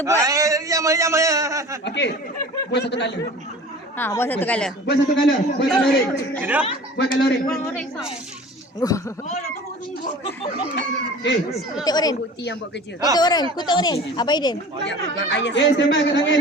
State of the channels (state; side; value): normal; both; correlation 0.41